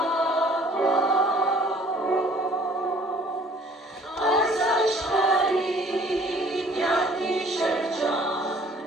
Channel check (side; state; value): both; normal; correlation 0.54